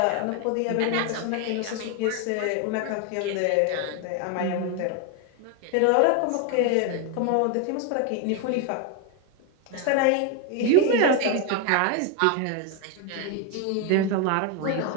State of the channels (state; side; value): different; both; correlation 0.01